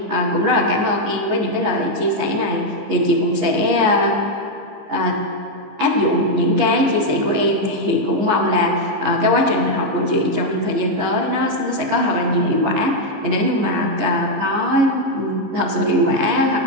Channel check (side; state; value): left; late; 14 ms